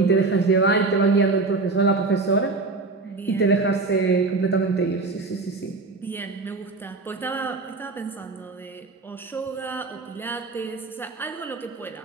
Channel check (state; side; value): quieter; left; 3.7 dB